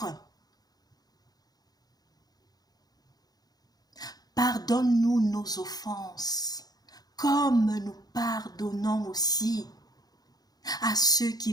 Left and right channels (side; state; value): right; late; 0.19 ms